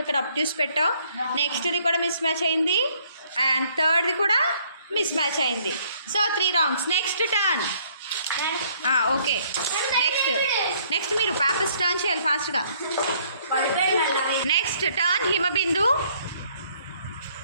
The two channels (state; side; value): inverted; both; correlation -0.64